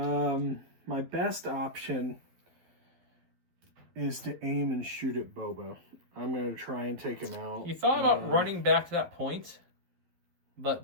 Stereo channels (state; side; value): late; left; 12 ms